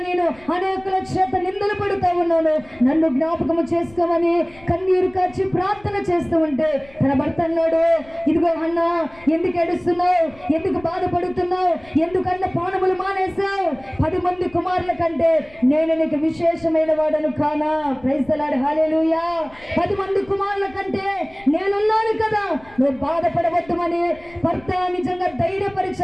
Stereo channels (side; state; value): left; noise; rumble, 24 dB below the sound